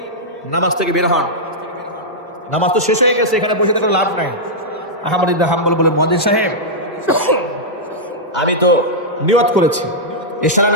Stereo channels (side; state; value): both; normal; correlation -0.08